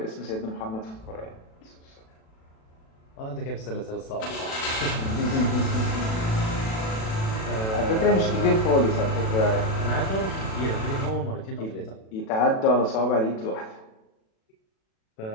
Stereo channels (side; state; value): right; late; 36 ms